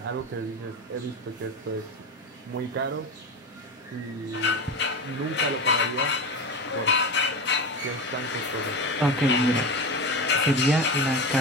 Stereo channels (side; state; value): both; normal; correlation 0.23